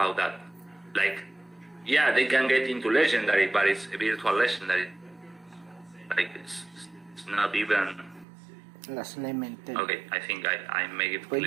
that. Like, yeah, they can get into legendary, but it's a virtual legendary. Like, it's not even... Las elemental. Okay, I think I make it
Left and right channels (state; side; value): drops out; left; at 8.2 s